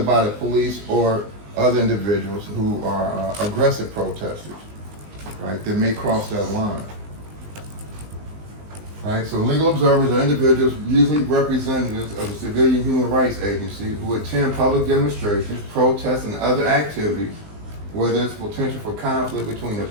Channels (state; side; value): late; left; 19 ms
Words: the police or other individuals who are aggressive protesters, right, that may cross that line. Right, so legal observers are individuals, usually representatives of a civilian human rights agency, who attend public demonstrations, protests, and other activities where there's potential for conflict between the